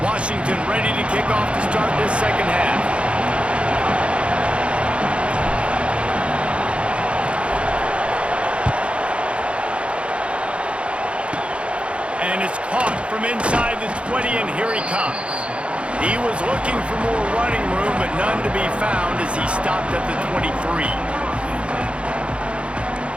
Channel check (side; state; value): left; late; 0.059 ms